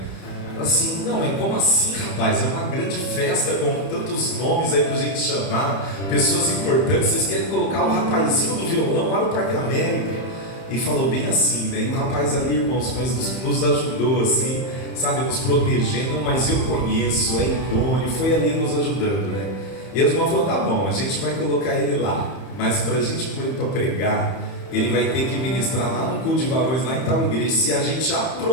Assim, não, mas como assim, rapaz? É uma grande festa com tantos nomes aí pra gente chamar, pessoas importantes. Vocês querem colocar o rapazinho do violão lá no Parque América? E falou bem assim, né? E o rapaz ali, irmãos, mas nos ajudou assim, sabe, nos protegendo. Mas eu conheço, é idôneo, foi ali nos ajudando, né? E os irmãos falaram, tá bom, a gente vai colocar ele lá, mas pra gente pôr ele pra pregar, ele vai ter que ministrar lá no culto de varões, lá em tal igreja, se a gente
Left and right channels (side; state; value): right; late; 31 ms